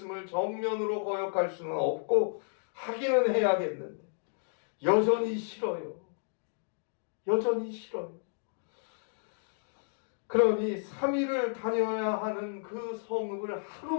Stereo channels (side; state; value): right; silent; digital silence